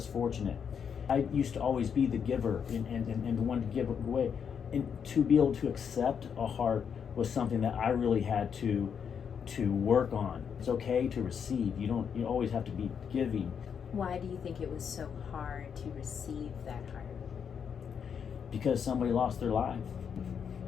fortunate. I used to always be the giver and the one to give away. And to be able to accept a heart was something that I really had to work on. It's okay to receive. You always have to be giving. Why do you think it was so hard to receive that heart? Because somebody lost their life.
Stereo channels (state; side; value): quieter; right; 7.3 dB